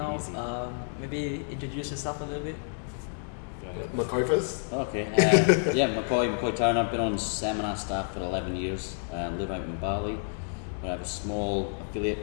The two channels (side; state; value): right; silent; 58 dB below the other